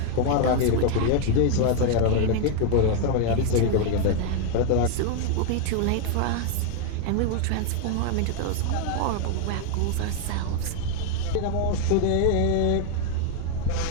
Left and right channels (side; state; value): both; different; correlation 0.00